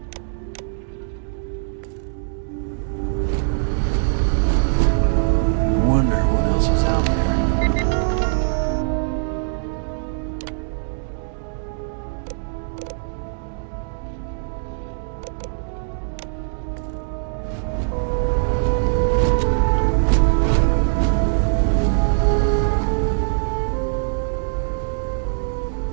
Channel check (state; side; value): silent; left; digital silence